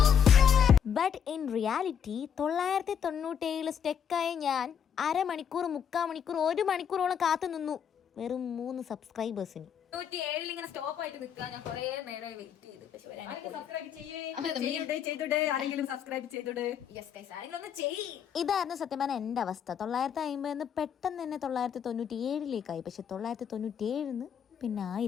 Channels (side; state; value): right; quieter; 8.1 dB